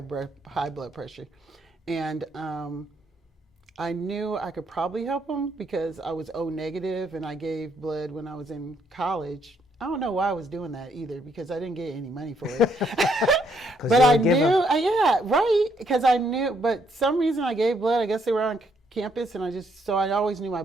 pressure. And I knew I could probably help him because I was O negative and I gave blood when I was in college. I don't know why I was doing that either because I didn't get any money for it. But I knew, because I knew, but some reason I gave blood, I guess they were on campus and I always knew my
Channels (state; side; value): normal; both; correlation 0.72